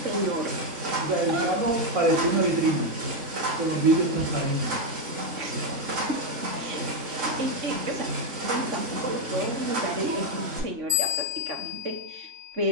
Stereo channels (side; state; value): left; late; 3.5 ms